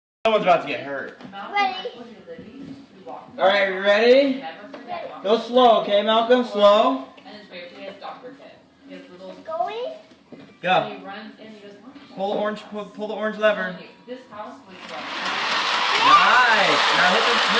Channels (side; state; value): both; identical; correlation 1.00